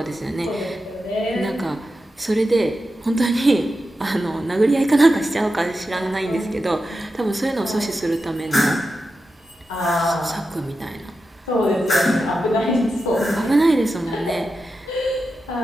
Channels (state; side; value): normal; both; correlation 0.90